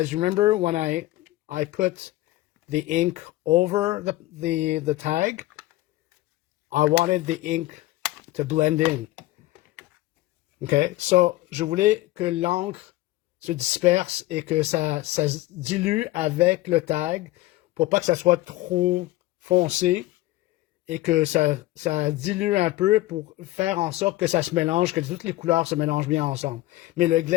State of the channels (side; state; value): right; quieter; 17.3 dB